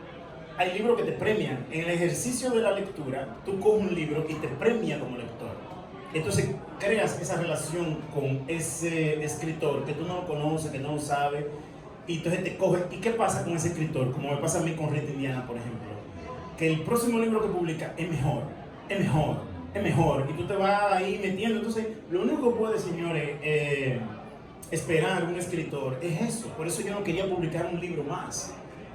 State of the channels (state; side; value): identical; both; correlation 1.00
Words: Hay libros que te premian. En el ejercicio de la lectura, tú coges un libro y te premia como lector. Entonces creas esa relación con ese escritor que tú no lo conoces, que no lo sabes. Y entonces te coge. ¿Y qué pasa con ese escritor? Como me pasa a mí con Rita Indiana, por ejemplo. Que el próximo libro que publica es mejor. Y tú te vas ahí metiendo. Entonces, lo único que puede, señores, esperar un escritor es eso. Por eso yo no quería publicar un libro más.